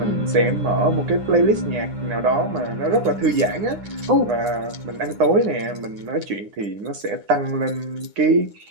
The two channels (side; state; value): left; late; 9.8 ms